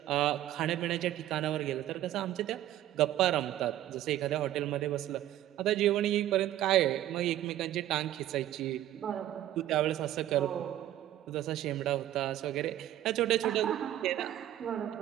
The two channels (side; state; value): left; quieter; 13.1 dB